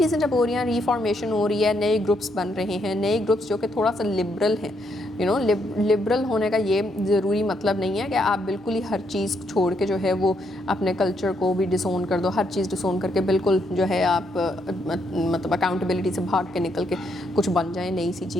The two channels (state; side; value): normal; both; correlation 0.76